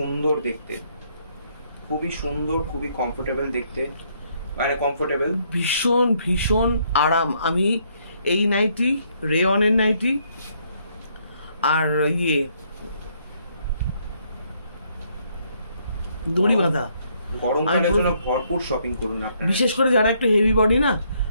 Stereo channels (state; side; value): inverted; both; correlation -0.70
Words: দেখতে, খুবই সুন্দর, খুবই কমফোর্টেবল দেখতে, মানে কমফোর্টেবল, ভীষণ ভীষণ আরাম। আমি এই নাইটি, রেয়নের নাইটি আর ইয়ে দড়ি বাঁধা, গরমকালের জন্য ভরপুর শপিং করুন আপনারা। বিশেষ করে যারা একটু হেভি বডি না